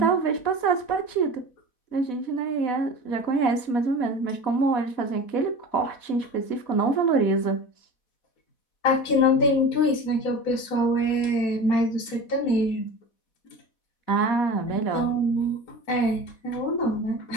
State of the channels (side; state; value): right; late; 4.1 ms